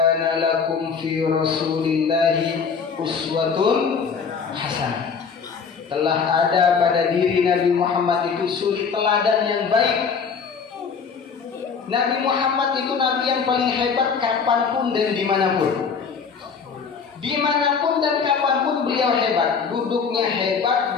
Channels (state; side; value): quieter; right; 5.9 dB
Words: lakum fi rasulillahi uswatun hasanah. Telah ada pada diri Nabi Muhammad itu suri teladan yang baik. Nabi Muhammad itu Nabi yang paling hebat kapanpun dan dimanapun. Dimanapun dan kapanpun beliau hebat. Duduknya hebat,